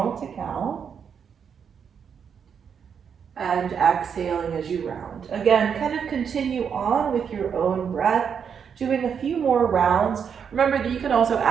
to cow. And exhaling as you round. Again, kind of continue on with your own breath, doing a few more rounds. Remember that you can also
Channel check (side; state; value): left; quieter; 7.1 dB